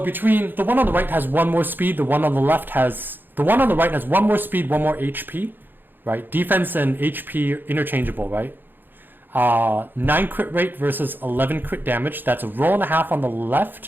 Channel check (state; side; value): late; left; 0.094 ms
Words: between the one on the right has 1 more speed, the one on the right has 1 more speed, 1 more HP, right? Defense and HP interchangeable, right? 9 crit rate versus 11 crit damage. That's a roll and a half on the